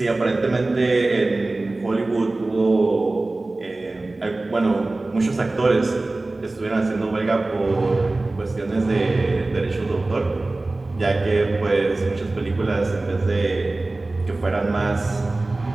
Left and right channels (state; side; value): quieter; left; 3.0 dB